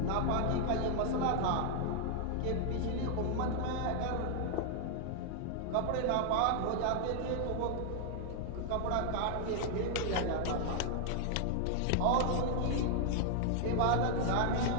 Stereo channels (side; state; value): both; different; correlation 0.00